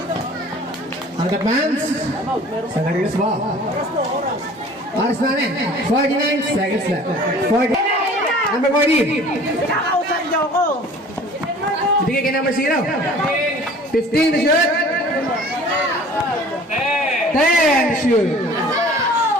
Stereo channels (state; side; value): normal; both; correlation 0.47